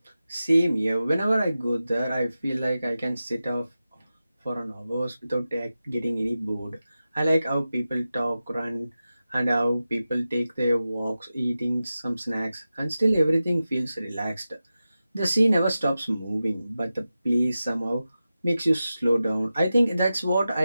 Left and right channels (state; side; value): inverted; both; correlation -0.93